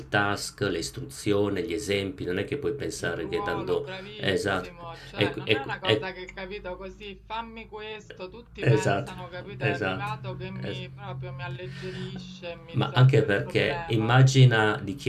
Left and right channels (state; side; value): identical; both; correlation 1.00